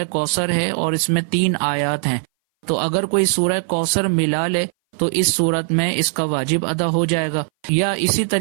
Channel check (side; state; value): left; silent; 61 dB below the other